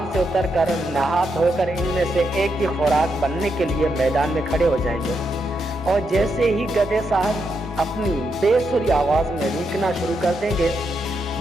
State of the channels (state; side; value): normal; both; correlation 0.82